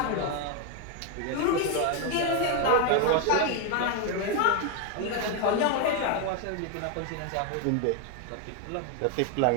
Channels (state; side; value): different; both; correlation 0.01